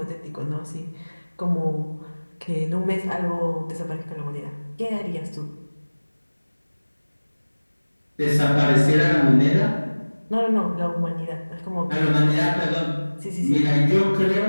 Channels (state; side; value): inverted; both; correlation -1.00